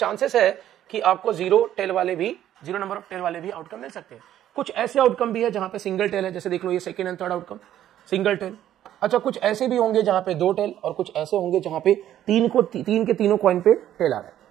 है कि आपको 0 टेल वाले भी, 0 नंबर ऑफ टेल वाले भी आउटकम मिल सकते हैं। कुछ ऐसे आउटकम भी है जहां पे सिंगल टेल है, जैसे देख लो ये second and third outcome single tail. अच्छा, कुछ ऐसे भी होंगे जहां पे 2 टेल, और कुछ ऐसे होंगे जहां पे 3 के तीनों कॉइन पे टेल आ रहा है,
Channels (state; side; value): quieter; left; 11.8 dB